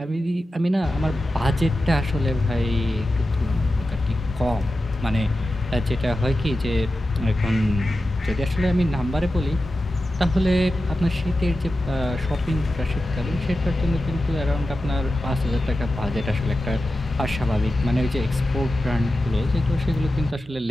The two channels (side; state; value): both; normal; correlation 0.92